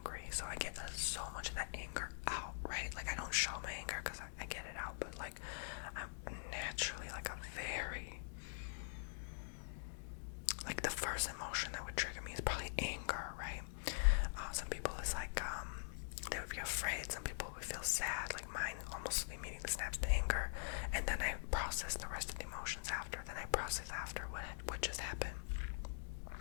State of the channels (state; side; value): silent; right; digital silence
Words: so I get so much of that anger out, right? Like, I don't show my anger because I get it out, but like, I'm naturally like a very, like, the first emotion that would trigger me is probably anger, right? Some people is like, they would be afraid, some people would feel sad, like mine almost immediately snaps to anger, and then I process the rest of the emotions after, then I process after what just happened.